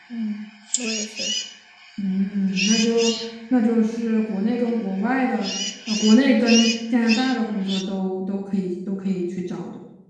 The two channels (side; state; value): both; identical; correlation 1.00